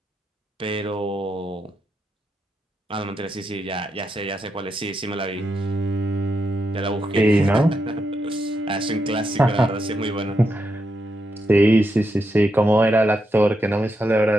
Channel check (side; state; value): both; normal; correlation 0.83